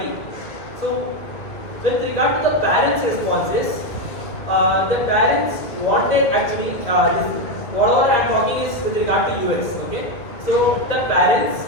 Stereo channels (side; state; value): right; late; 2.1 ms